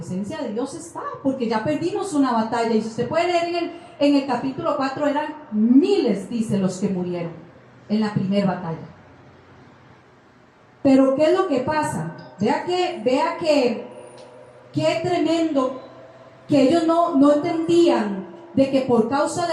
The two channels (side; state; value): both; identical; correlation 1.00